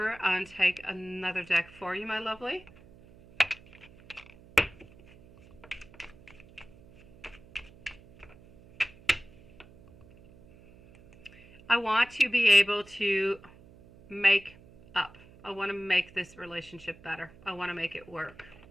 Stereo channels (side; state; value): right; noise; hum, 23 dB below the sound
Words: and take another deck for you, my lovely. I want to be able to make up. I want to make this relationship better. I want to make it work.